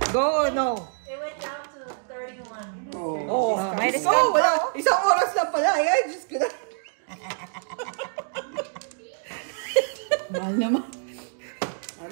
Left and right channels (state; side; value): silent; left; digital silence